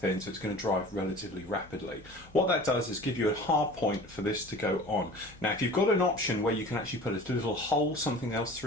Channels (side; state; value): both; normal; correlation 0.41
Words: so it's going to dry relatively rapidly. What that does is give you a hard point for this to go on. Now if you've got an option where you can actually put a little hole, something else